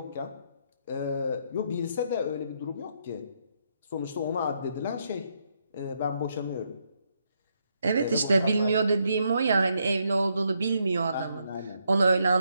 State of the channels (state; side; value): inverted; both; correlation -0.77